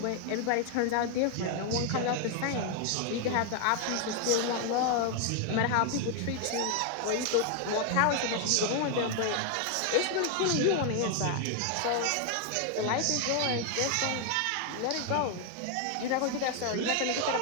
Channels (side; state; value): both; different; correlation 0.00